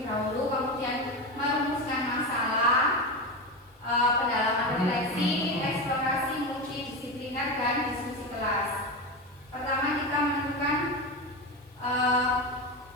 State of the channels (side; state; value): both; normal; correlation 0.19